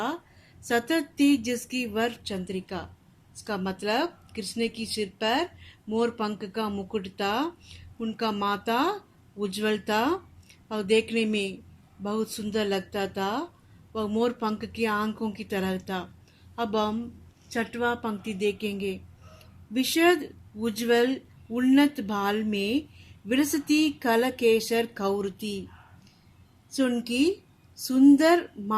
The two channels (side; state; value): both; identical; correlation 1.00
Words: सतती जिसकी वर चंद्रिका। इसका मतलब कृष्ण की सिर पर मोर पंख का मुकुट था। उनका माथा उज्जवल था और देखने में बहुत सुंदर लगता था। वह मोर पंख की आंखों की तरह था। अब हम छठवां पंक्ति देखेंगे। विशद उज्जवल उन्नत भाल में विलसती कलकेशर कौरती। उनकी सुंदर